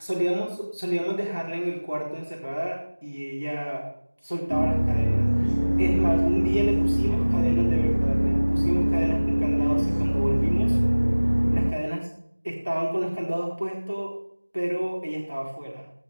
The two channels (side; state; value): both; inverted; correlation -1.00